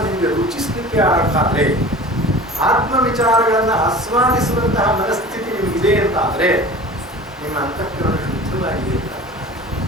ನಿಮಗೆ ರುಚಿಸ್ಲಿಕ್ಕೆ ಆದ್ರೆ, ಆತ್ಮ ವಿಚಾರಗಳನ್ನ ಆಸ್ವಾದಿಸುವಂತಹ ಮನಸ್ಥಿತಿ ನಿಮಗಿದೆ ಅಂತಾದ್ರೆ ನಿಮ್ಮ ಅಂತಃಕರಣ ಶುದ್ಧವಾಗಿದೆ ಅಂತ.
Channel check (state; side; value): normal; both; correlation 0.39